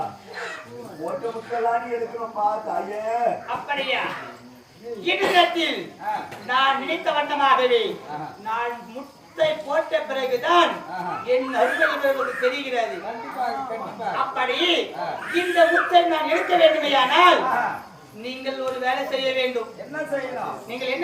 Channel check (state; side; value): identical; both; correlation 1.00